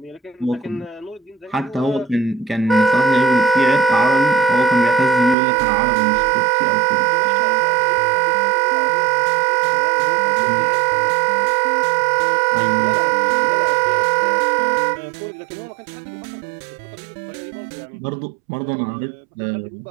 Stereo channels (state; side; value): drops out; left; at 5.4 s